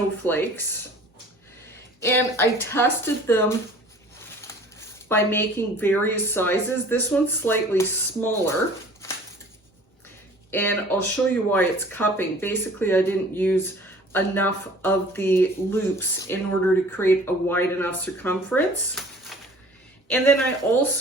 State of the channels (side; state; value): both; normal; correlation 0.48